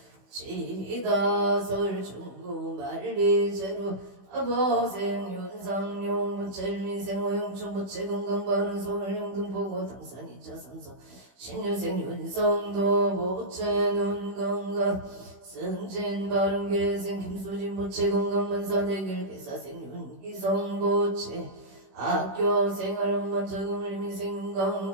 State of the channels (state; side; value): late; left; 16 ms